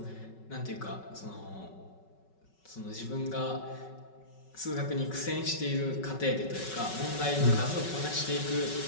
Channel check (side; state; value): right; late; 5.3 ms